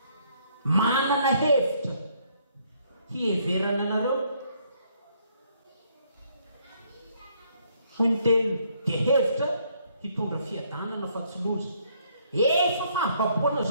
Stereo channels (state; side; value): inverted; both; correlation -0.68